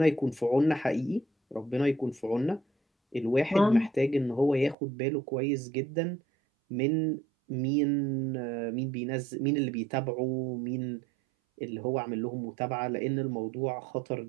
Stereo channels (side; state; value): left; drops out; at 4.8 s